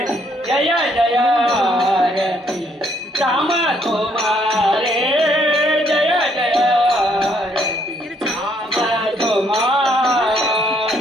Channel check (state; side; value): normal; both; correlation 0.69